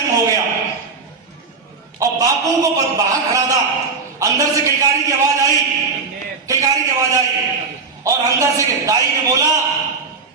हो गया। और बापू को बाहर खड़ा था, अंदर से किलकारी की आवाज आई, किलकारी की आवाज आई, और अंदर से दाई ने बोला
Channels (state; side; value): quieter; left; 4.6 dB